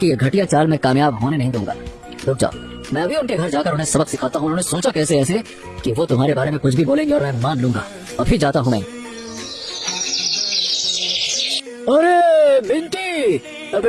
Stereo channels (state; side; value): identical; both; correlation 1.00